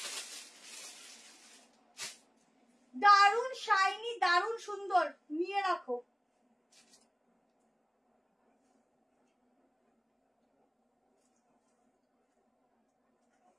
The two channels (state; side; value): identical; both; correlation 1.00